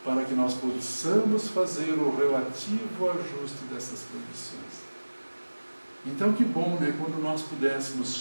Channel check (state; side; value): inverted; both; correlation -1.00